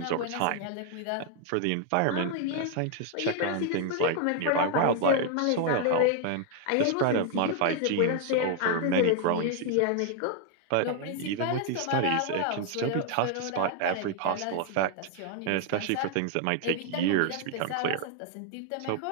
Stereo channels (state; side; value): different; both; correlation 0.00